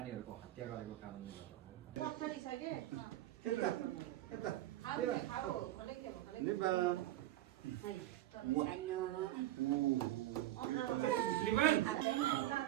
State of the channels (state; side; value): quieter; left; 14.7 dB